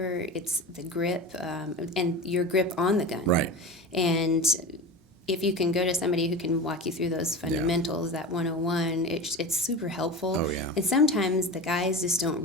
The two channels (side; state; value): both; normal; correlation 0.29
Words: it's the grip, and your grip on the gun. Right. And if you can go to somebody who can walk you through those fundamentals, that 101, it's super helpful. Oh, yeah. And sometimes the guys just don't